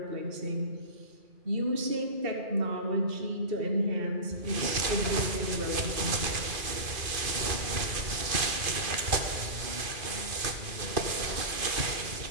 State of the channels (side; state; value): left; late; 2.5 ms